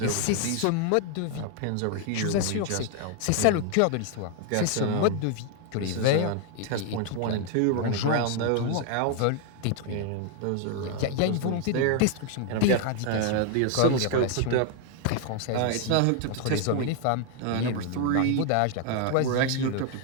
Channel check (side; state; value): both; different; correlation 0.00